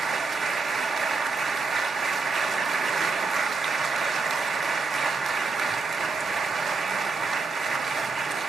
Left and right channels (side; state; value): left; quieter; 4.1 dB